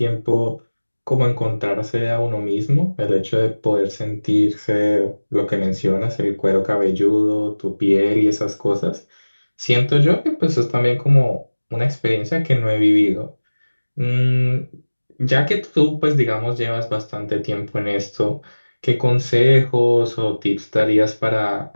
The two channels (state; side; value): inverted; both; correlation -1.00